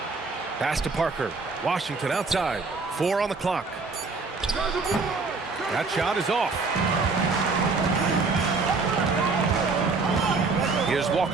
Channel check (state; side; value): quieter; left; 4.2 dB